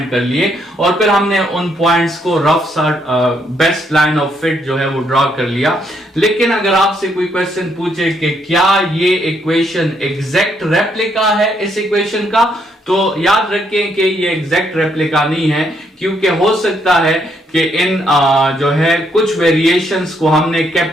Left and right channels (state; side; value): normal; both; correlation 0.73